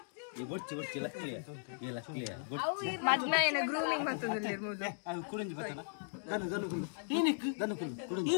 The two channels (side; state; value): right; silent; digital silence